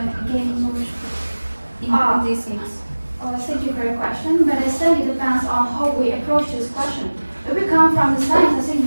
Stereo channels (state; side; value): inverted; both; correlation -1.00